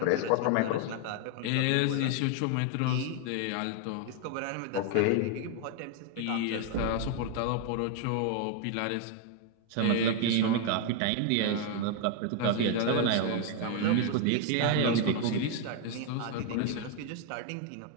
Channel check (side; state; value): both; different; correlation 0.01